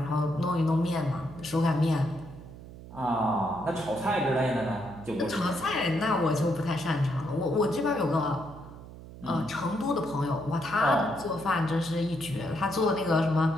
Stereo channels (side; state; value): right; noise; hum, 15 dB below the sound